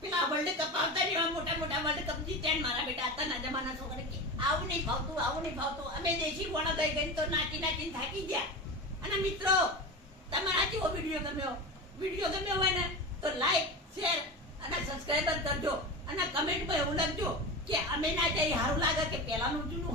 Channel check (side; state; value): both; normal; correlation 0.25